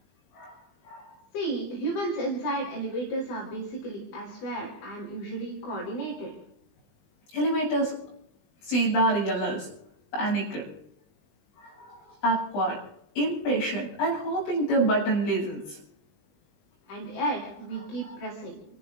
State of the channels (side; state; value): right; late; 20 ms